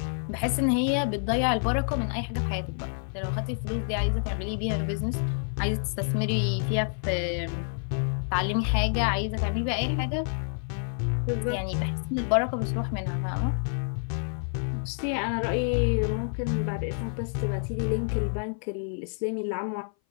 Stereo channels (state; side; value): silent; right; 57 dB below the other